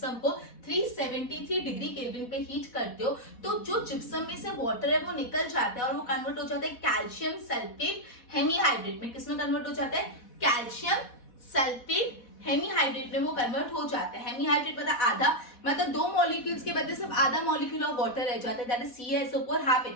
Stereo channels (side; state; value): right; late; 4.1 ms